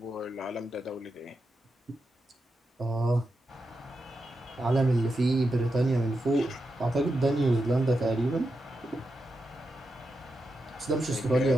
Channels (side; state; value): both; normal; correlation 0.87